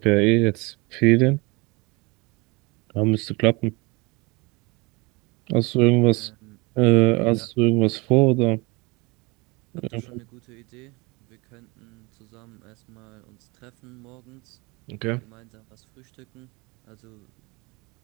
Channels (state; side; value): quieter; left; 26.4 dB